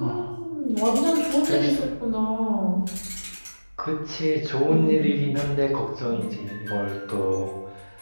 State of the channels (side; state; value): both; inverted; correlation -1.00